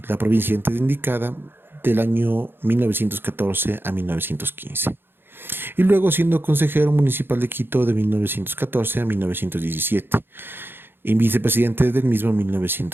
la provincia antes indicada del año 1914 a 1915. Y luego siendo consejero municipal de Quito de 1914 a 1917 y vicepresidente del mismo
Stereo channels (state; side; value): late; left; 0.10 ms